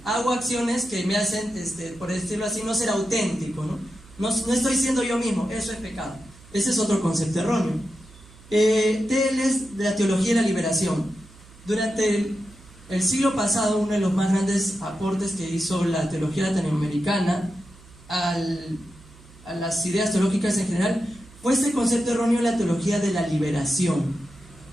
hago acciones que me hacen, por decirlo así, no ser auténtico, no estoy siendo yo mismo, eso es pecado. Ese es otro concepto erróneo. Teles de la teología de la liberación. Durante el siglo pasado, uno de los más grandes aportes que hizo la teología latinoamericana a las ideas teológicas en general fue este concepto erróneo de la teología de la liberación.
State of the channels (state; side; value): noise; right; hum, 23 dB below the sound